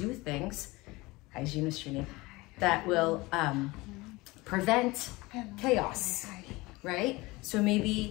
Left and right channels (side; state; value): right; quieter; 22.0 dB